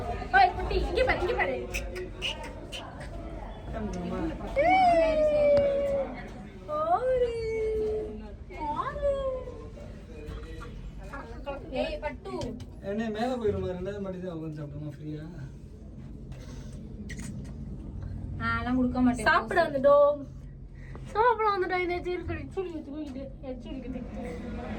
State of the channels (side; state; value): both; identical; correlation 1.00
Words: ஓய் குட்டி, இங்க பாரு, இங்க பாரு. ஏய் பட்டு என்ன மேல போயிடுமா? ரெண்டாவது மாடி தான் உட்காந்து சாப்பிடுமா ஃப்ரீயா? அதெல்லாம் கொடுக்க மாட்டேன். சாப்பிட வந்துட்டோம். சாப்பிட வந்துட்டோம். இந்த சீர்கடி சுடுக்கு தூக்கிட்டு எச்சுடிக்கு